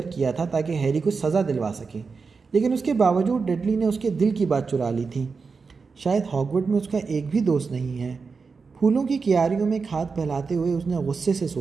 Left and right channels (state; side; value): quieter; left; 4.9 dB